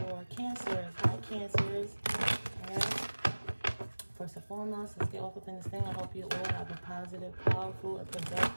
Cancers. Hi, Cancers. Alright. First and foremost, let's get off within this thing. I hope you all have a positive, powerful, and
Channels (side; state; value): both; inverted; correlation -1.00